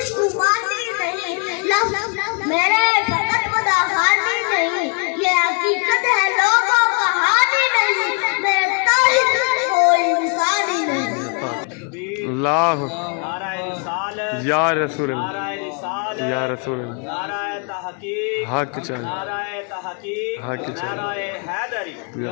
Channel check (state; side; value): quieter; right; 37.8 dB